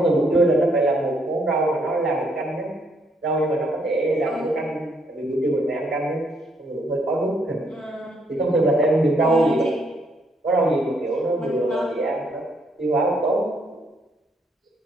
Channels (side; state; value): both; normal; correlation 0.72